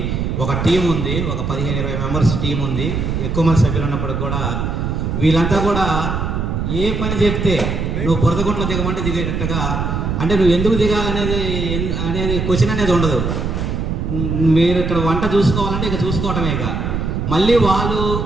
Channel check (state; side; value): noise; right; rumble, 2 dB below the sound